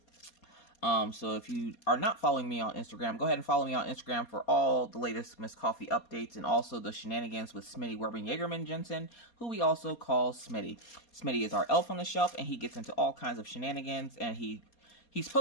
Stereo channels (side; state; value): right; late; 4.2 ms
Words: So if you are not following me on Instagram, go ahead and follow me on Instagram for all the latest Miss Coffee updates and also the shenanigans with Smitty Werbing Jagerman Jensen, who we also call Smitty. Smitty is our elf on the shelf, and he gets into all kinds of shenanigans, and he's